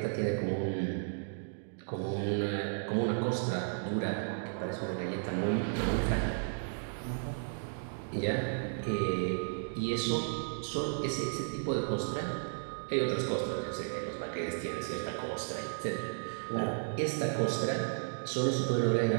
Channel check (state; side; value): silent; left; digital silence